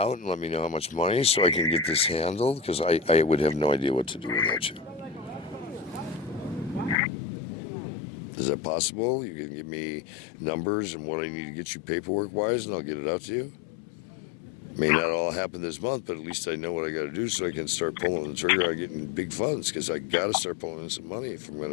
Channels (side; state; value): right; drops out; at 7.0 s